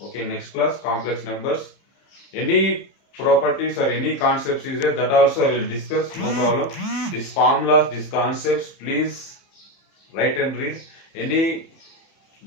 Okay, next class complex numbers. Any properties or any concepts is there, that also I will discuss. No problem. These formulas, these concepts, please write and read. Any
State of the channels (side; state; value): right; late; 31 ms